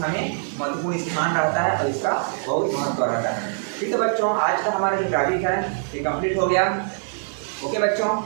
में महत्वपूर्ण स्थान रहता है और इसका बहुत महत्व रहता है। ठीक है बच्चों, आज का हमारा जो टॉपिक है ये कंप्लीट हो गया। ओके बच्चों।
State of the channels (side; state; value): left; silent; 63 dB below the other